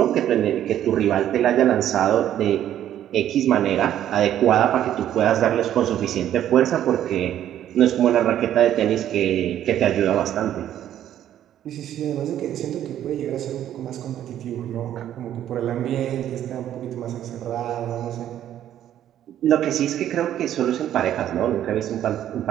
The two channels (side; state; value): left; quieter; 11.3 dB